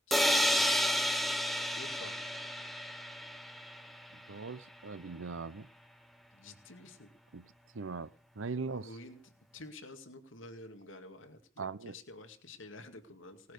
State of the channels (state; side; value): normal; both; correlation 0.79